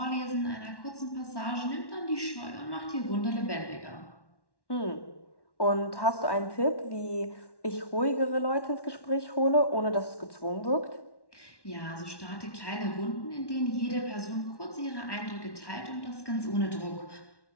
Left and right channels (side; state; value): right; late; 1.1 ms